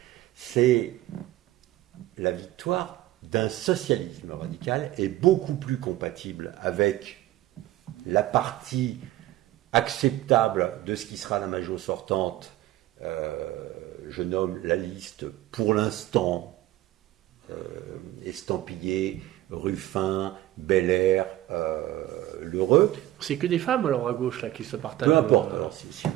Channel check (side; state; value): left; quieter; 15.2 dB